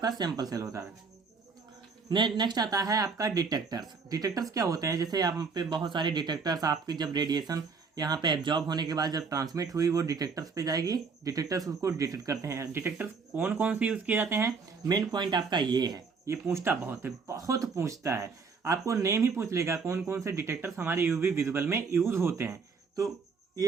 सैंपल सेल होता है। नेक्स्ट आता है आपका डिटेक्टर्स। डिटेक्टर्स क्या होते हैं, जैसे यहाँ पे बहुत सारे डिटेक्टर्स, आपकी जब रेडिएशन यहाँ पे एब्जॉर्ब होने के बाद जब ट्रांसमिट हुई वो डिटेक्टर्स पे जाएगी, डिटेक्टर्स उसको डिटेक्ट करते हैं। डिटेक्टर्स कौन कौन से यूज़ किए जाते हैं, मेन पॉइंट आपका ये है, ये पूछता बहुत है, बहुत पूछता है, आपको नेम ही पूछ लेगा कौन कौन से डिटेक्टर्स हमारे यूवी विजुअल में यूज होते हैं, तो ये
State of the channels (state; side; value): quieter; left; 5.0 dB